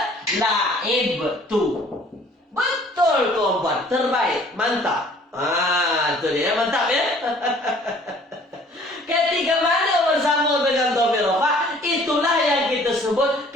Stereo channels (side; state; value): both; normal; correlation 0.54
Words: la'ib. betul. Betul tuan-puan, terbaik, mantap. Itu dia, mantap ya. Ketika mana bersambung dengan dhamir rafa, itulah yang kita sebut